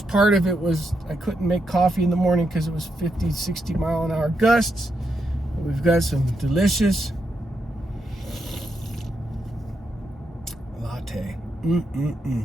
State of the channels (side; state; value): both; normal; correlation 0.83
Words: part of it was I couldn't make coffee in the morning because it was 50, 60 mile an hour gusts. We've got some delicious latte.